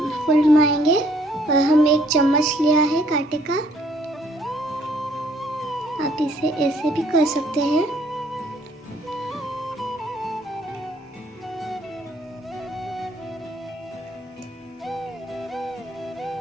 फुलवाएंगे और हम एक चम्मच लिया है कांटे का। आप इसे ऐसे भी कर सकते हैं।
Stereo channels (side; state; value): both; normal; correlation 0.64